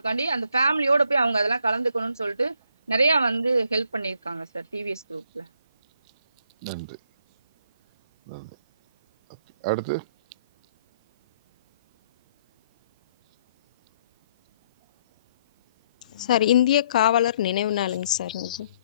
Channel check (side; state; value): both; inverted; correlation -0.67